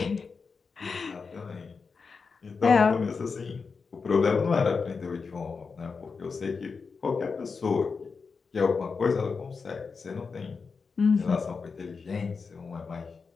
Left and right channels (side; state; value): right; quieter; 5.0 dB